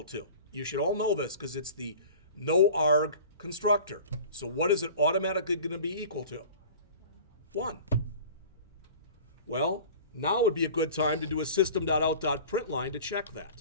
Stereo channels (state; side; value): inverted; both; correlation -0.41